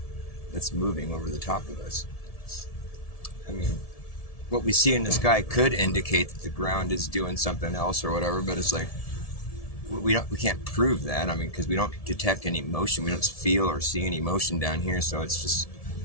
moving over the top of us. I mean, what we see in the sky could indicate that the ground is doing something else or whatever, but it's like we can't prove that. I mean, because we don't detect any motion. We don't feel or see any motion down here, so it's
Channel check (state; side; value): late; right; 1.7 ms